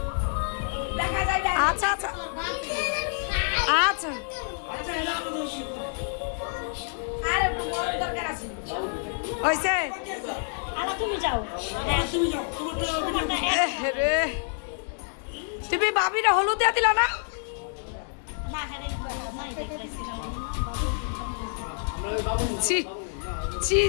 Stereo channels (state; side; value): silent; right; 60 dB below the other